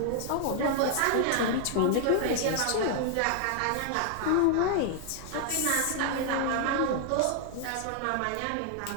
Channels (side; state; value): both; different; correlation -0.01